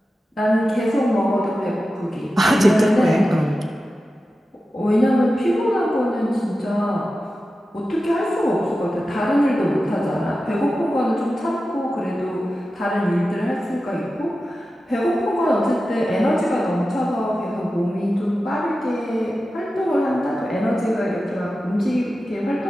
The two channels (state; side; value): normal; both; correlation 0.93